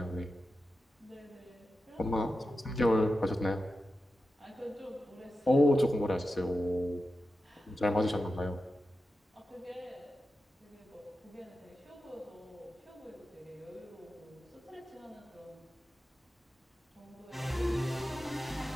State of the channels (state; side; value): normal; both; correlation 0.91